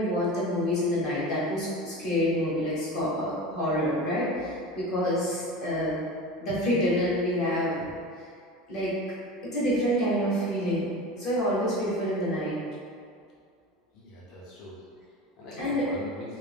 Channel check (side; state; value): both; normal; correlation 0.32